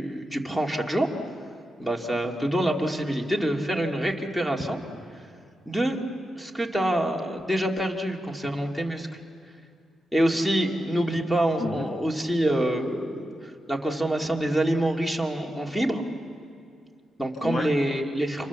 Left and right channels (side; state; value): both; normal; correlation 0.89